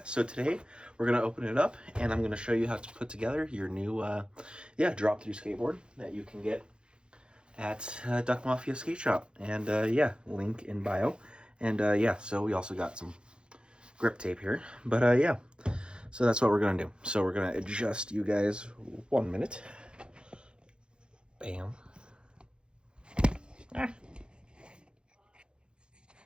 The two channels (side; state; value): left; late; 0.052 ms